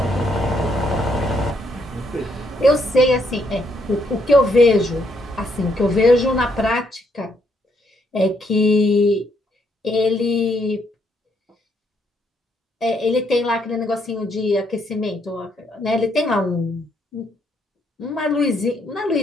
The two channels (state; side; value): normal; both; correlation 0.73